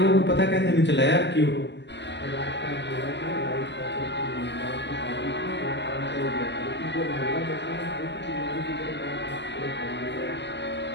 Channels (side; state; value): right; late; 0.51 ms